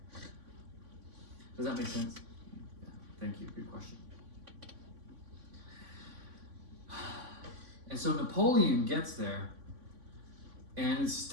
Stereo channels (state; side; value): late; left; 3.5 ms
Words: Does that make sense? Yeah, thank you. Good question. And so Napoleon gets there, and